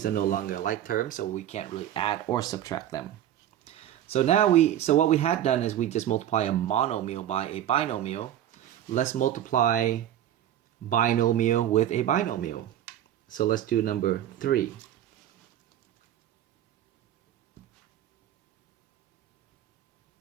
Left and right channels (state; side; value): quieter; left; 11.4 dB